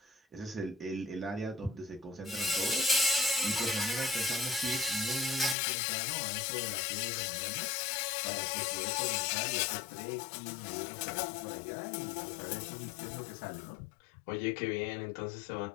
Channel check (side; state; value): right; drops out; at 5.6 s